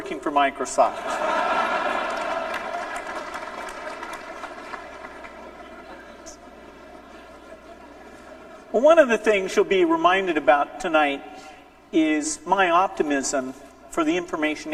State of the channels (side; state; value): both; identical; correlation 1.00